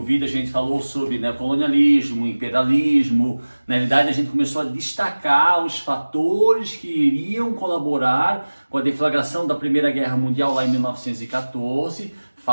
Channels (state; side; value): inverted; both; correlation -1.00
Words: vídeo a gente falou sobre, né, colonialismo, imperialismo. Na realidade a gente começou a destacar os fatores que iriam colaborar com a deflagração da Primeira Guerra Mundial lá em 1914,